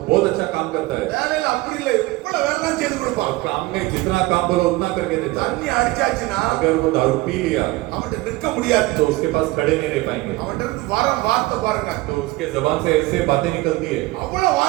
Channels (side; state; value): left; quieter; 20.4 dB